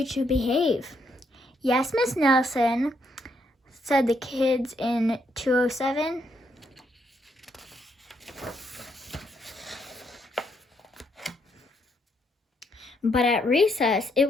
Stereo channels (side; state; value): both; normal; correlation 0.75